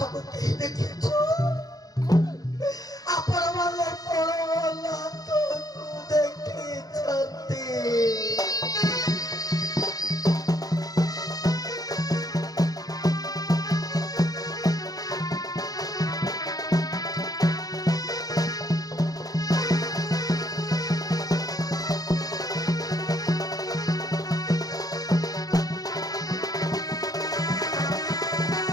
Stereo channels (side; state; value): right; late; 0.18 ms